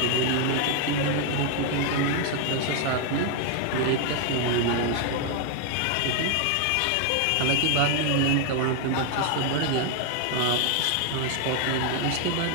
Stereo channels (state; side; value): different; both; correlation 0.00